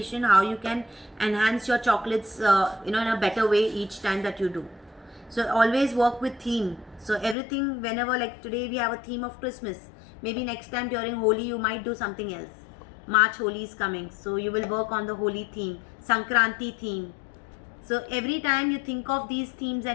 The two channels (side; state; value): right; drops out; at 7.4 s